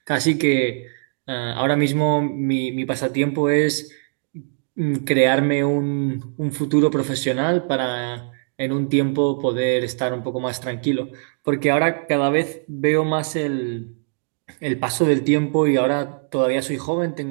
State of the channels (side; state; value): left; silent; digital silence